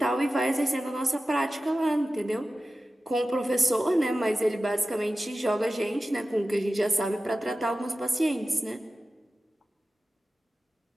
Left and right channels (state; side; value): normal; both; correlation 0.94